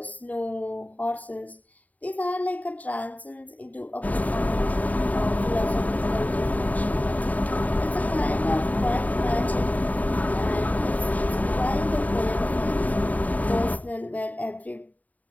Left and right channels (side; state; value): right; late; 0.074 ms